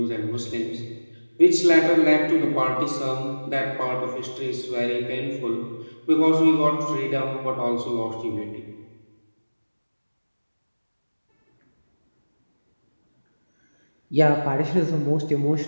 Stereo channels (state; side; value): inverted; both; correlation -1.00